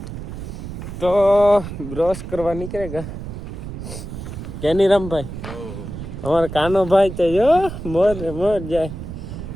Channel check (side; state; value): right; noise; rumble, 9 dB below the sound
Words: તો બ્રશ કરવા નીકળેગા કેની રામભાઈ. અમારા કાનો ભાઈ તો જો મોર જાય.